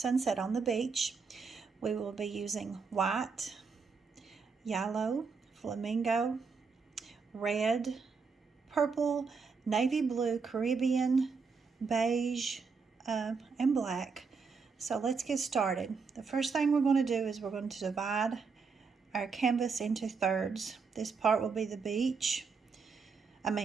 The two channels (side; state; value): left; quieter; 5.1 dB